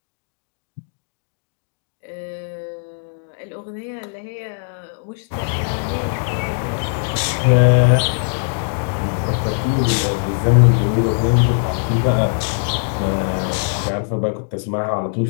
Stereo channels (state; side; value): silent; right; digital silence